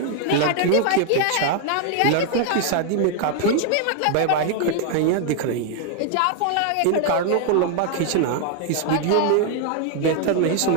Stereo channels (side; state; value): both; different; correlation 0.00